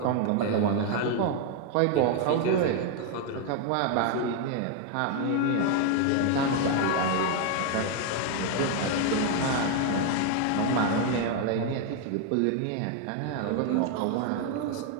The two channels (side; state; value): both; different; correlation 0.01